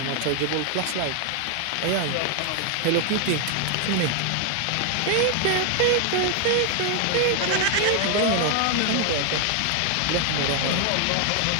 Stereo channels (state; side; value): different; both; correlation 0.00